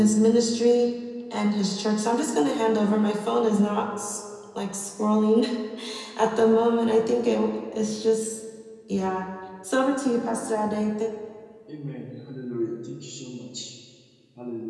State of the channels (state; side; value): identical; both; correlation 1.00